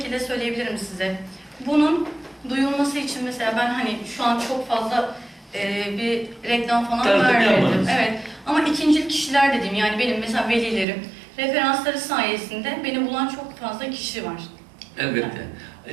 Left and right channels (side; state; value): left; drops out; at 10.9 s